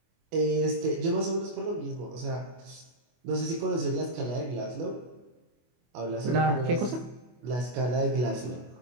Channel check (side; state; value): left; late; 24 ms